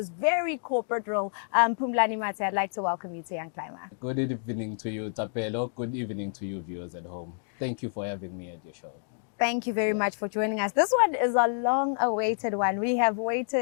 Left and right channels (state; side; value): silent; right; digital silence